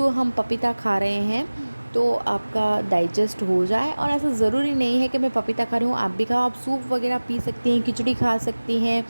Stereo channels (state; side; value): inverted; both; correlation -1.00